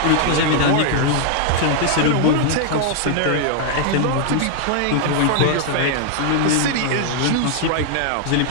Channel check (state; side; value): different; both; correlation 0.00